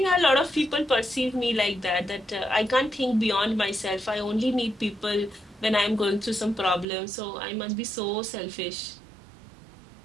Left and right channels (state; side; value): drops out; left; at 6.9 s